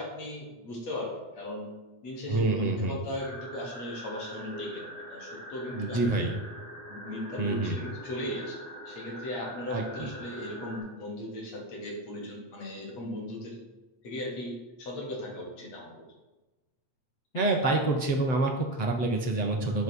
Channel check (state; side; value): late; right; 7.8 ms